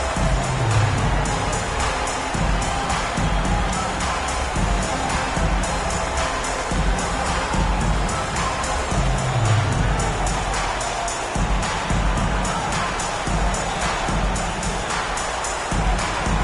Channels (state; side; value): identical; both; correlation 1.00